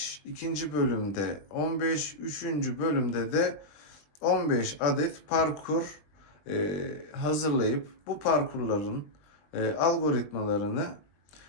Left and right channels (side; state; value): right; late; 20 ms